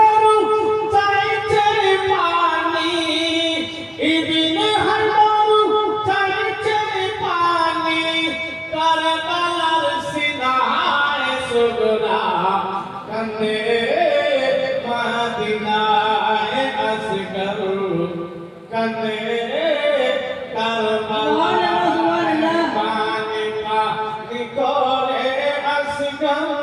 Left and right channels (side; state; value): both; identical; correlation 1.00